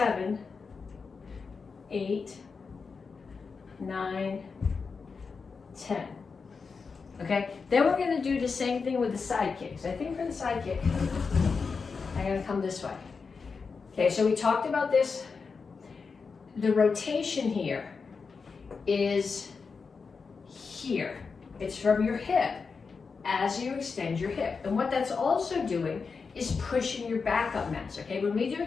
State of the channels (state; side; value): quieter; right; 5.0 dB